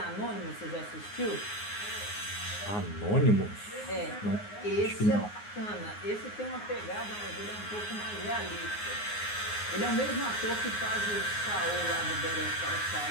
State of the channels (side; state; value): right; late; 9.6 ms